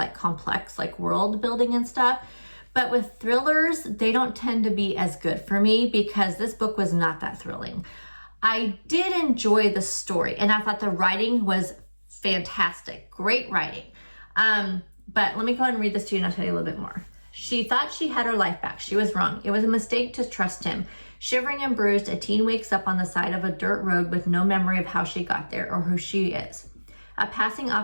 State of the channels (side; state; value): both; inverted; correlation -1.00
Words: complex, like world building and stuff. But with thrillers, they don't tend to be as good for me because this book was not that thrilling. I did enjoy the story and I thought the writing was fantastic. Great writing. But let me go ahead and read this to you and I'll tell you a little bit more. She thought she had her life back. She was wrong. It was a mistake to trust him. Shivering and bruised, a teen wakes up on the side of a dirt road with no memory of how she got there or who she is. A passing